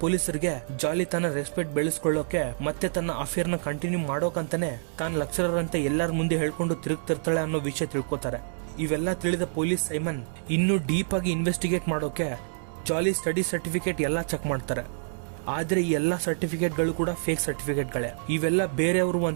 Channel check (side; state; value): left; silent; digital silence